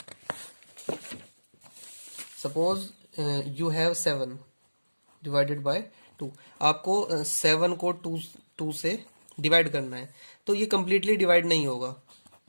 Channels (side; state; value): both; inverted; correlation -1.00